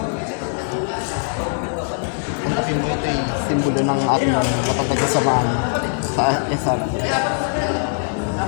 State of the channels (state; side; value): silent; right; digital silence